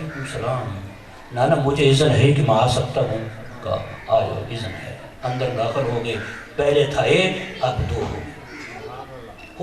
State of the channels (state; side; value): identical; both; correlation 1.00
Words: السلام، نانا مجھے اذن ہے کہ میں آ سکتا ہوں؟ کہا آؤ اذن ہے۔ اندر داخل ہو گئے، پہلے تھا ایک اب دو ہو گئے۔